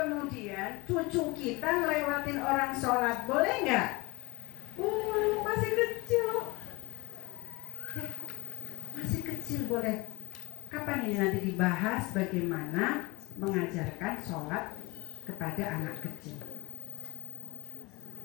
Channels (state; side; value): quieter; right; 24.4 dB